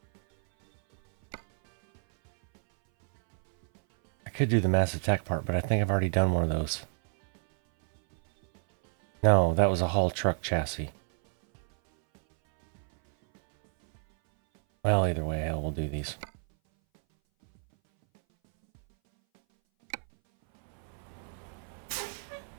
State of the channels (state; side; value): silent; left; 59 dB below the other